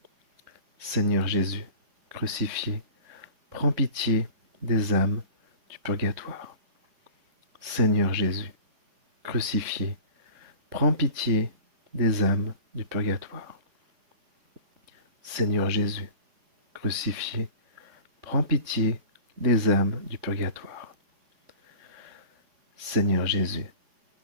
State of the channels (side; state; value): left; late; 3.6 ms